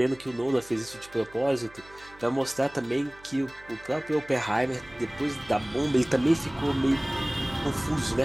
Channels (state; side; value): noise; right; hum, 24 dB below the sound